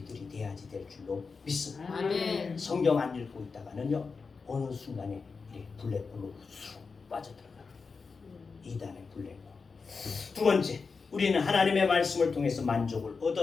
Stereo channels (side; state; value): right; quieter; 4.8 dB